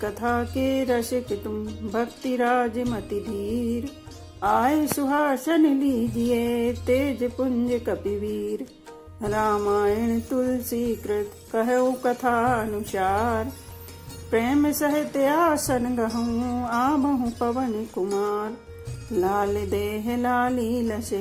कथा के रसिक तुम भक्ति राज मति धीर। आए सुहासन लीजिए तेज पुंज कपिवीर। रामायण तुलसी कृत कहु कथा अनुसार। प्रेम सहित आसन गहूँ आबहु पवन कुमार। लाल देह लाली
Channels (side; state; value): both; identical; correlation 1.00